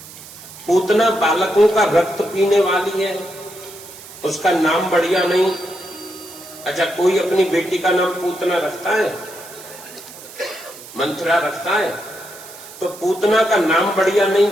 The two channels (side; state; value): right; noise; hiss, 17 dB below the sound